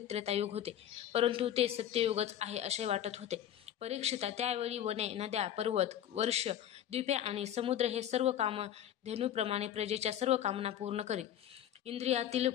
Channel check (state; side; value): quieter; right; 10.6 dB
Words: त्रेतायुग होते, परंतु ते सत्ययुगच आहे असे वाटत होते. परीक्षिता, त्यावेळी वने, नद्या, पर्वत, वर्ष, द्वीपे आणि समुद्र हे सर्व कामधेनूप्रमाणे प्रजेच्या सर्व कामना पूर्ण करीत. इंद्रियातील